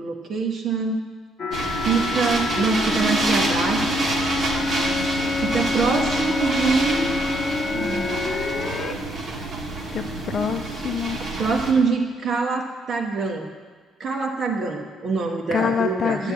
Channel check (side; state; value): both; normal; correlation 0.71